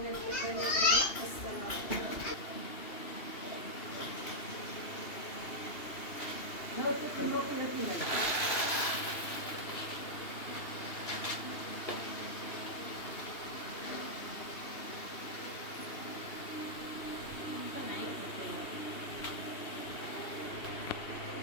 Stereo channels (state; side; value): late; right; 2.8 ms